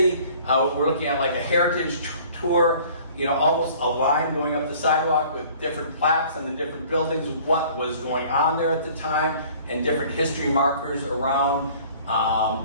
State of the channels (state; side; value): inverted; both; correlation -0.51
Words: We're looking at like a heritage tour, almost a line going up the sidewalk with different plaques on the different buildings, what was going on there at the time, and different history markers around.